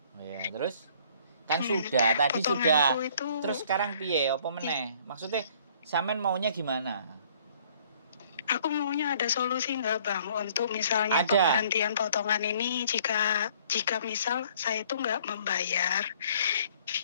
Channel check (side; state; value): both; inverted; correlation -0.59